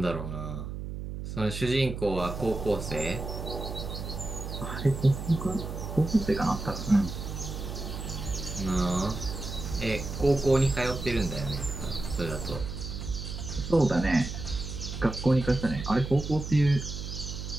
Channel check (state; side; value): noise; right; hum, 7 dB below the sound